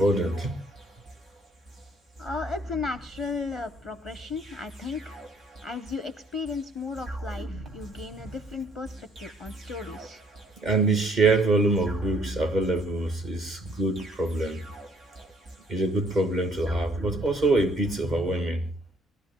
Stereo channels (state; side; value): normal; both; correlation 0.63